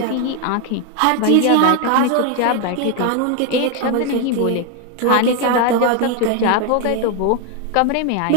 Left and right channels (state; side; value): different; both; correlation 0.01